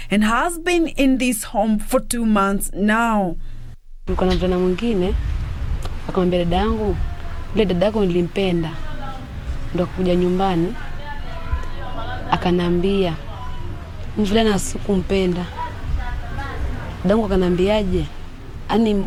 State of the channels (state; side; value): identical; both; correlation 1.00